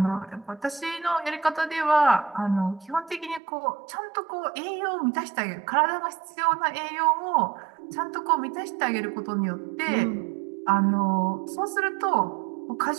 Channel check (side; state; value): left; drops out; at 3.4 s